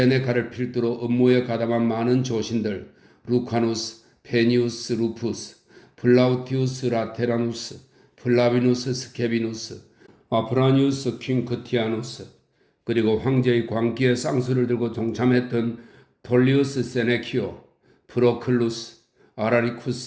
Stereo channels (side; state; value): both; identical; correlation 1.00